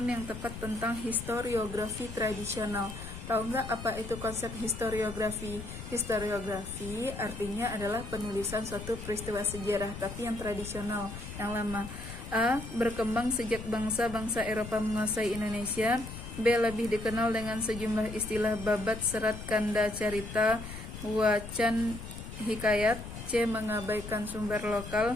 yang tepat tentang historiografi tradisional. Tahu nggak apa itu konsep historiografi? Historiografi artinya adalah penulisan suatu peristiwa sejarah, tapi yang tradisional, yang lama. A. Berkembang sejak bangsa-bangsa Eropa menguasai Indonesia. B. Lebih dikenal dengan sejumlah istilah babat, serat, kanda, carita, wacan, hikayat. C. Mengabaikan sumber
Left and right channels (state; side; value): noise; left; rumble, 10 dB below the sound